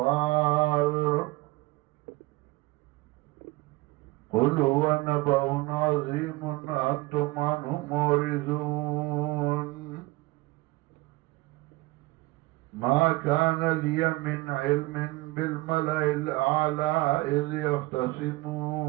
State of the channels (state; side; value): quieter; left; 21.4 dB